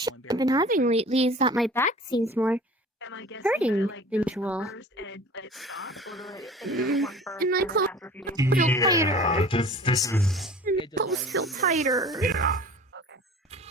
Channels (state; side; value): normal; both; correlation 0.43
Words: I've been having lately is that my back seems more Am I guessing hurting that, like, than do it usual. first and let it stop, or do I take one first And my and then clothes after a few days? feel yeah, tighter. this is And my clothes feel tighter. yeah. Okay.